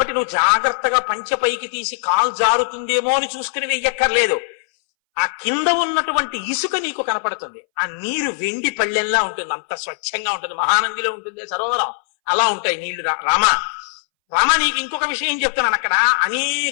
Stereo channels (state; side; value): silent; right; 63 dB below the other